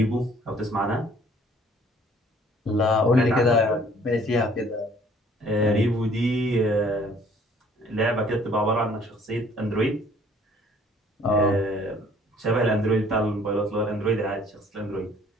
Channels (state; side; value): normal; both; correlation 0.57